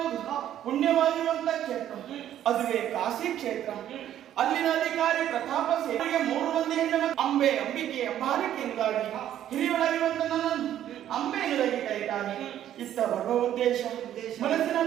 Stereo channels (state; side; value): quieter; left; 11.3 dB